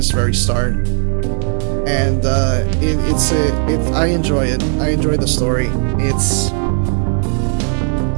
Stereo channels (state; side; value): silent; left; 56 dB below the other